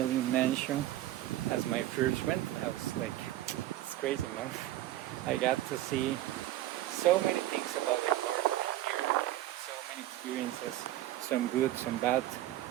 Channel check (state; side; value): quieter; left; 14.7 dB